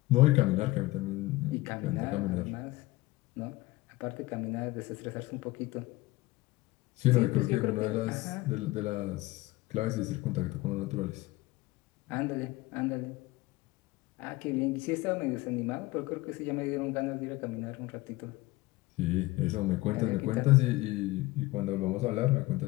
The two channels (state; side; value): quieter; right; 19.9 dB